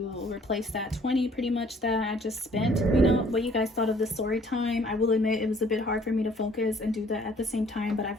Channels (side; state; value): both; normal; correlation 0.58